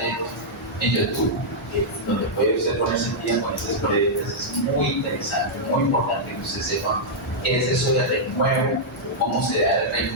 en YouTube donde puede usted ponerse en día con esas prédicas. Es muy interesante, muy importante que usted sepa qué es eso de renuevo, cómo se da el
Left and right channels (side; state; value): both; normal; correlation -0.08